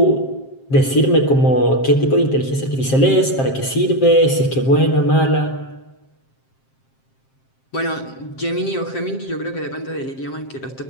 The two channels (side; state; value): right; late; 7.5 ms